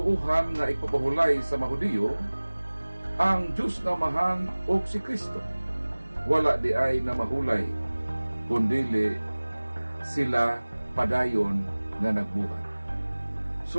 nga ipapahulay sa Mahudiyo ang Diyos nga amahan og si Kristo. Wala di ay na mahulay, kundili sila padayon nga nagbuhat. So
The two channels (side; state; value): both; inverted; correlation -1.00